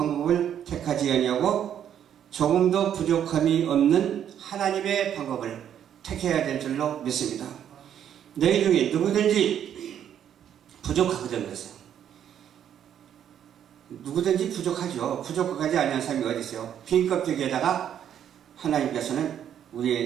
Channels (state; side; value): quieter; left; 9.6 dB